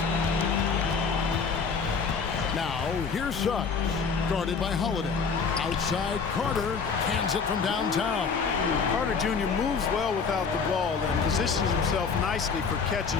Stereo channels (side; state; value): right; quieter; 5.5 dB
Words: Now, here's Suggs, guarded by Holiday. Outside, Carter hands it from downtown. Carter Jr. moves well without the ball and positions himself nicely for catch